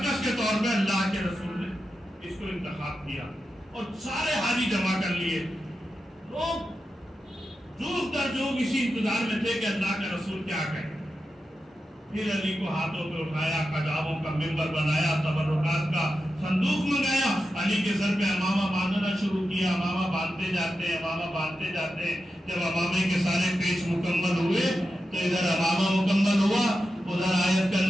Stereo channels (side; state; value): both; normal; correlation 0.90